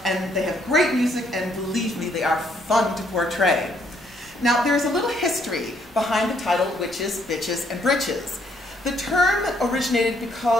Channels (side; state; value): both; normal; correlation 0.69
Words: and they have great music, and believe me, they are fun to portray. Now, there's a little history behind the title Witches, Bitches, and Britches. The term originated